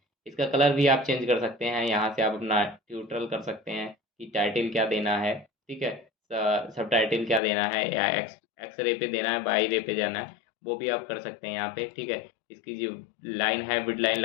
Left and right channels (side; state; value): right; drops out; at 7.4 s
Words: इसका कलर भी आप चेंज कर सकते हैं। यहाँ से आप अपना ट्यूटोरियल कर सकते हैं कि टाइटल क्या देना है। ठीक है, सब टाइटल क्या देना है, या एक्स रे पे देना है, बाई रे पे जाना है, वो भी आप कर सकते हैं यहाँ पे। ठीक है, इसकी जो लाइन है विड लाइन